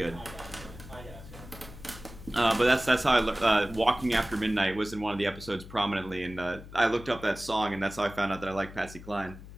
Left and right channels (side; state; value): left; noise; hum, 15 dB below the sound